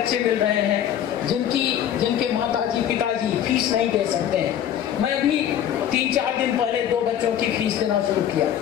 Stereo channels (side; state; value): right; quieter; 10.2 dB